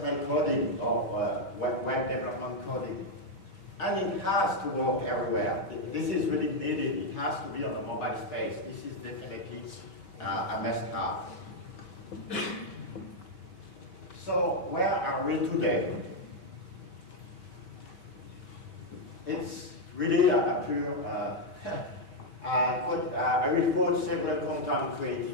coding or web development coding. And it has to work everywhere. This is really needed. It has to be on a mobile space. This is definitely a must-have. So where are we today? It's really a pure, I will quote several content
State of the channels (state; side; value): late; right; 4.8 ms